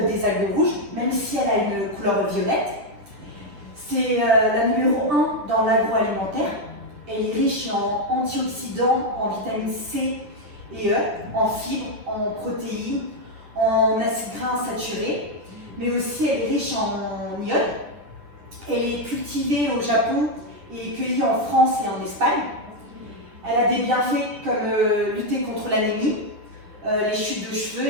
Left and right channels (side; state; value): left; late; 9.7 ms